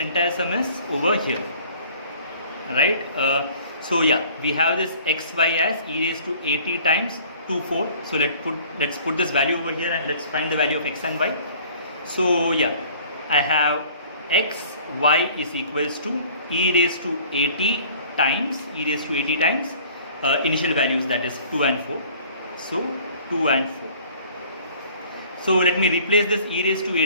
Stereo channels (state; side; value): inverted; both; correlation -0.51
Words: sum is over here, right? So yeah, we have this xy as e raised to at times 2, 4. So let's put this value over here, and let's find the value of x and y. So yeah, I have x, y is equals to e raised to at times initial values, that is 2 and 4. So 2 and 4. So let me replace this e raised to